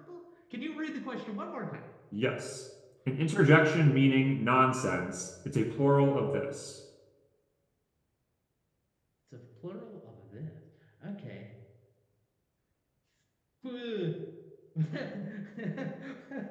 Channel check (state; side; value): identical; both; correlation 1.00